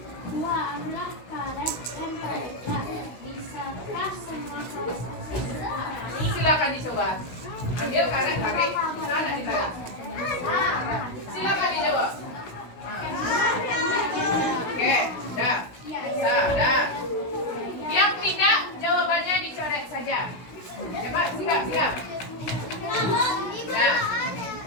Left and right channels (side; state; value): right; late; 16 ms